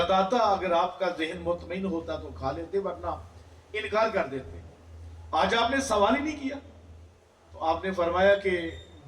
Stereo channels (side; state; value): both; identical; correlation 1.00